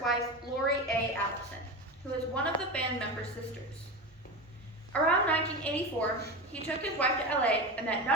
wife, Lori A. Allison, who was one of the band members' sisters. Around 1984, he took his wife to LA and met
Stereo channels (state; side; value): normal; both; correlation 0.23